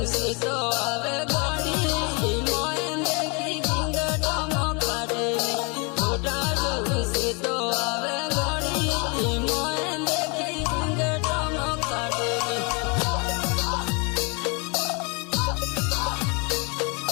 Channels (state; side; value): quieter; right; 31.8 dB